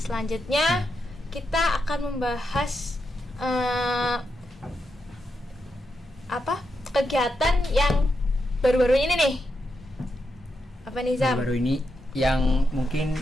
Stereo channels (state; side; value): normal; both; correlation 0.85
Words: kita akan membahas kegiatan yang baru-baru ini nih. Apa nih Zam? Baru ini yang mungkin